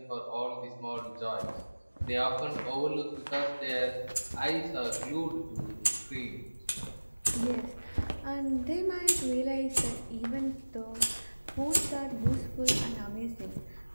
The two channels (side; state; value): both; inverted; correlation -1.00